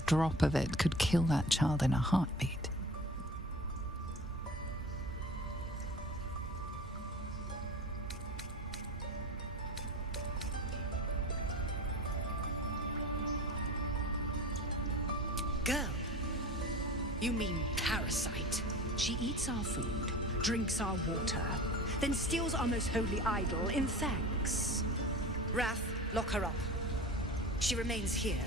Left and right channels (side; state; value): both; normal; correlation 0.36